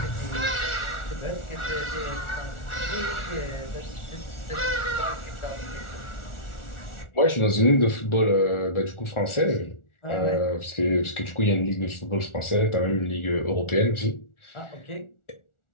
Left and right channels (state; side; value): late; right; 1.4 ms